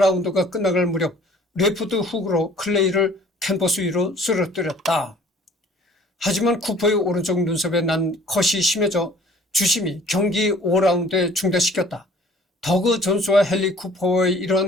끝나갈 무렵 레프트 훅으로 클레이를 캔버스 위로 쓰러뜨렸다. 하지만 쿠퍼의 오른쪽 눈썹에 난 컷이 심해져 주심이 경기 5라운드에 중단시켰다. 더그 존스와 헨리 쿠퍼의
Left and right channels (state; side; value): normal; both; correlation 0.53